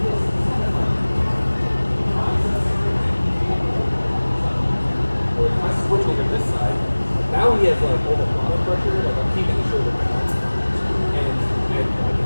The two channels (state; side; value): inverted; both; correlation -1.00